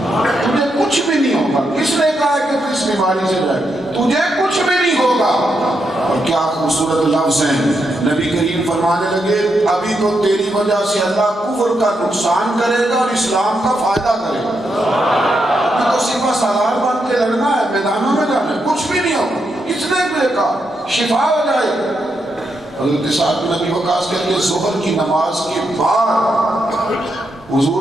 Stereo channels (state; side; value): normal; both; correlation 0.82